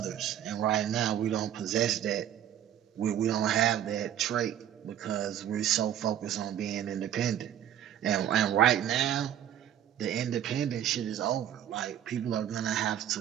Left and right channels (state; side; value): quieter; left; 10.8 dB